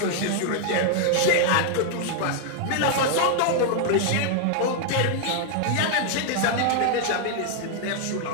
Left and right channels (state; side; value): different; both; correlation 0.00